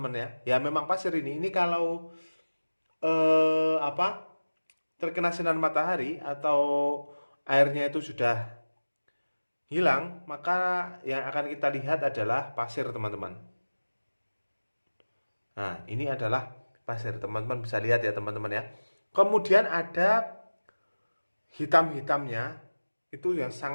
ya. Ya memang pasir ini. Ini kalau terkena sinar matahari atau airnya itu sudah hilang, maka yang akan kita lihat adalah pasir teman-teman. Nah, ini adalah pasir, teman-teman bisa lihat ya teman-teman ya. Kemudian ada hitam-hitamnya, itu yang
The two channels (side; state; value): both; inverted; correlation -1.00